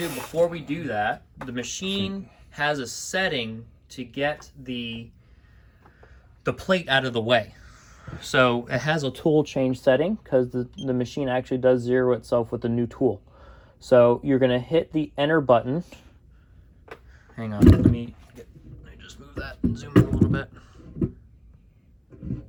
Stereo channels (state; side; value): identical; both; correlation 1.00